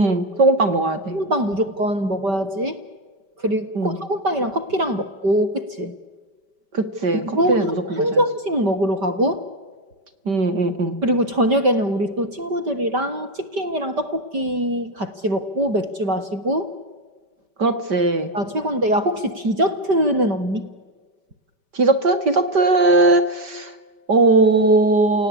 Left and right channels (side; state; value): left; late; 5.1 ms